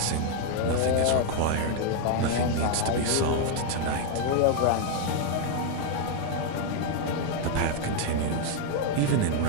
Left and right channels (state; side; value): different; both; correlation 0.00